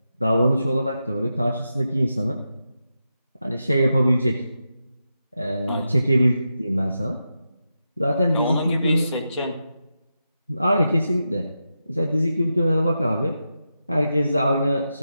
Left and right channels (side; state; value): both; inverted; correlation -0.88